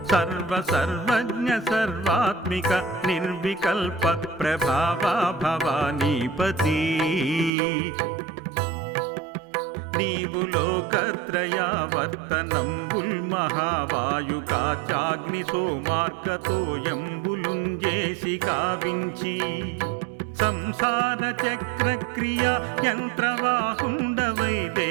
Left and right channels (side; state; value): left; drops out; at 7.5 s